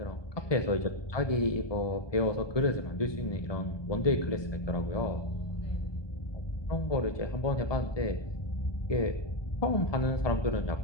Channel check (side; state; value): right; late; 1.2 ms